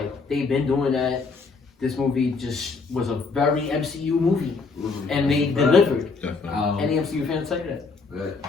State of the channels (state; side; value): quieter; right; 4.4 dB